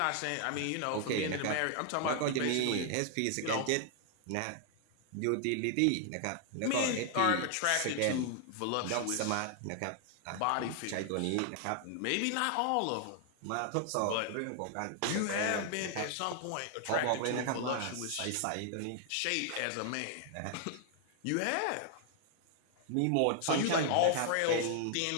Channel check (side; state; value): both; different; correlation 0.00